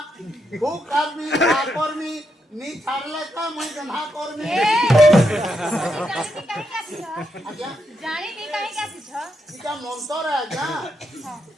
खूब कर्मी कर्मी नी छाड़ले का मैं गन्हा कर्मी आज्ञा जानी नहीं काहे का सिछ इका मंतर है आज्ञा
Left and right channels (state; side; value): normal; both; correlation 0.82